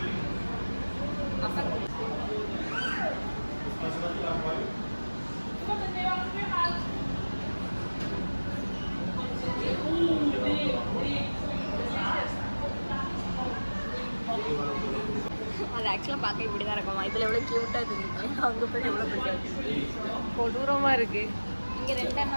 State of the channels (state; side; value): inverted; both; correlation -1.00